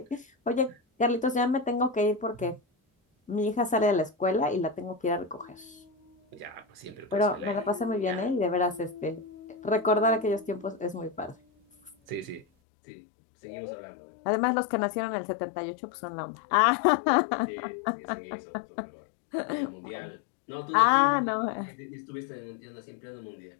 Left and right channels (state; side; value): drops out; right; at 12.5 s